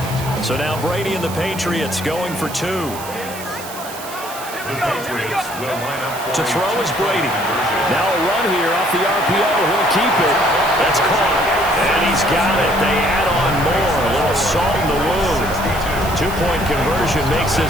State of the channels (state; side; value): noise; right; hiss, 13 dB below the sound